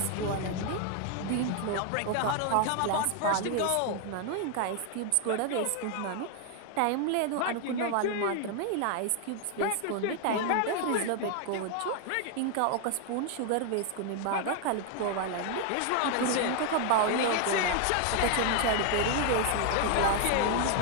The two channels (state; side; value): different; both; correlation 0.00